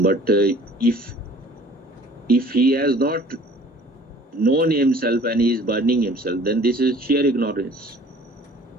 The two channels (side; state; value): both; normal; correlation 0.51